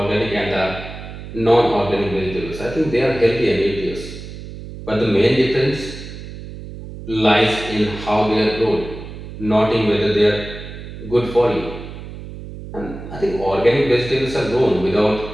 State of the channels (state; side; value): noise; right; hum, 12 dB below the sound